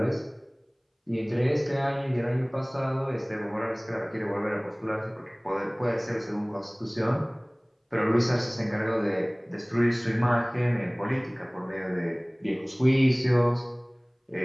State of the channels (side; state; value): both; identical; correlation 1.00